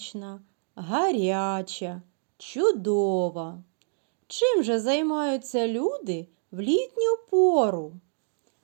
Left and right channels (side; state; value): left; silent; digital silence